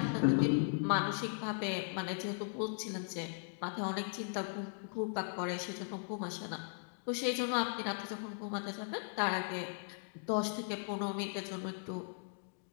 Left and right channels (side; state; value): right; silent; digital silence